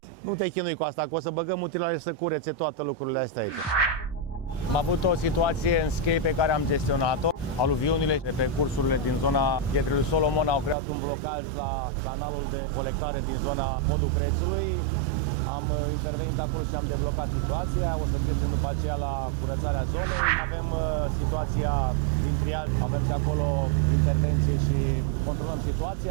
Nu te chinui cu asta, că o să băgăm utilaje să curețe toate lucrurile astea aici. Am avut o situație în Schei pe care am gestionat-o. Aluviunile de pe cursurile din zona Pietrelui Solomon au creat un blocaj la canalul de colectare din zona podul Crețului. Am intervenit acolo și am deblocat situația. O să trecem după aceea la curățarea zonei. Avem situația din triaj, avem și acolo intervenție și controlăm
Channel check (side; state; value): left; drops out; at 10.8 s